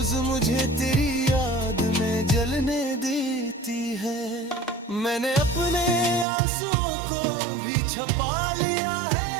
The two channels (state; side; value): drops out; left; at 6.2 s